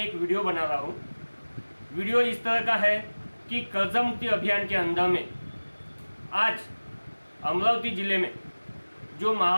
एक वीडियो बना रहा हूँ। वीडियो इस तरह का है कि कर्जा मुक्ति अभियान के अंदर में आज अमरावती ज़िले में, जो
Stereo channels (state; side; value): inverted; both; correlation -1.00